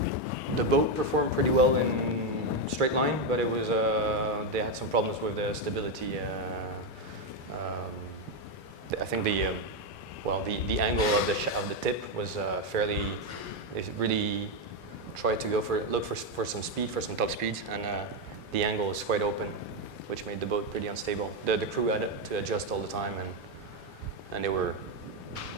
the boat performed pretty well in straight line, but it was they had some problems with the stability. I think the angle of the tip was fairly. It really tried to look for some speed, for some top speeds, and the angle was quite open, which made the boat pretty unstable. The crew had to adjust all the time, and they were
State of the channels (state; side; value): normal; both; correlation 0.06